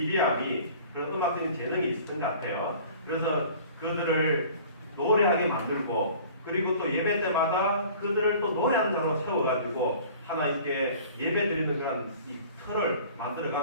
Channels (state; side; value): inverted; both; correlation -0.46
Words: 그런 음악적인 재능이 있었던 것 같아요. 그래서 그들을 노래하게 만들고 그리고 또 예배 때마다 그들을 또 노래하는 자로 세워가지고 하나님께 예배 드리는 그런 이 틀을